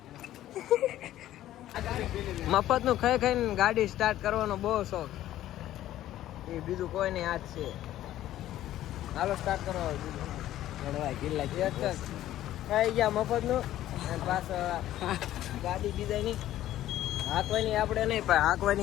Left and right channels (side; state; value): right; quieter; 13.4 dB